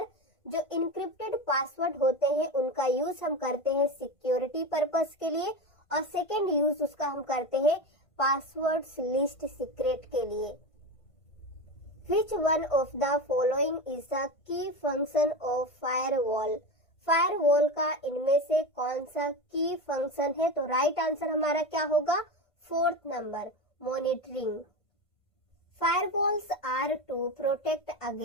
जो इनक्रिप्टेड पासवर्ड होते हैं उनका यूज हम करते हैं सिक्योरिटी पर्पस के लिए, और सेकेंड यूज उसका हम करते हैं पासवर्ड्स लिस्ट सीक्रेट के लिए। Which one of the following is the key function of firewall? Firewall का इनमें से कौन सा की फंक्शन है? तो राइट आंसर हमारा क्या होगा? 4th number, monitoring. Firewalls are to protect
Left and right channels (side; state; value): right; late; 1.5 ms